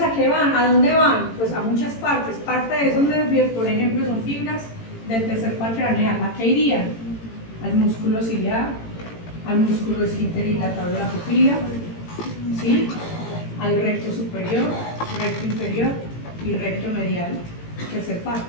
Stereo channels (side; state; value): right; late; 18 ms